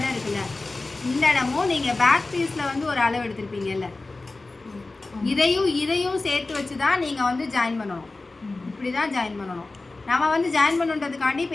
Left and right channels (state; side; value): quieter; right; 3.3 dB